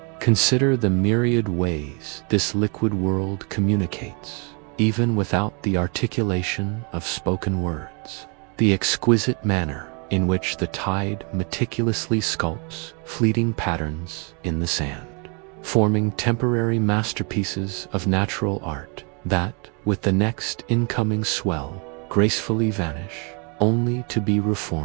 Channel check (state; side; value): quieter; left; 34.4 dB